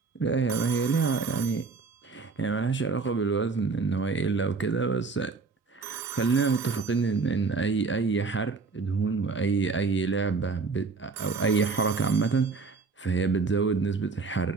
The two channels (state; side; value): quieter; left; 4.4 dB